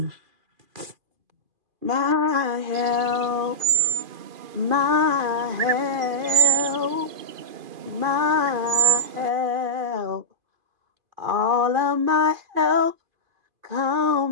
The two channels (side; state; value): left; late; 2.5 ms